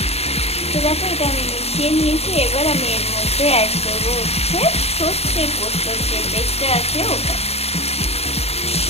তো দেখো এটা আমি মিশিয়ে নিয়েছি। এবার আমি এর মধ্যে অ্যাড করবো সর্ষে পোস্তর যে পেস্টটা আছে ওটা।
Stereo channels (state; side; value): late; right; 0.30 ms